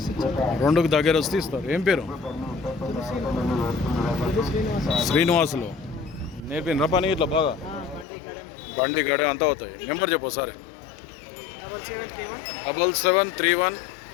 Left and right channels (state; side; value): drops out; right; at 8.1 s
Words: 2కు దగ్గర వస్తే ఇస్తారు. ఏం పేరు? శ్రీనివాసులు. నేర్పినరా పని ఇట్లా బాగా? బండి గడ అంతా అవుతాయి. నెంబర్ చెప్పు సార్.